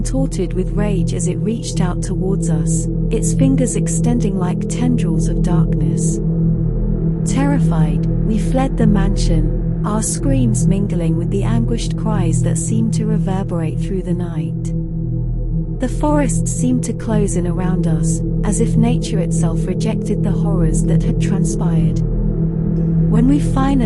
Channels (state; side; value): identical; both; correlation 1.00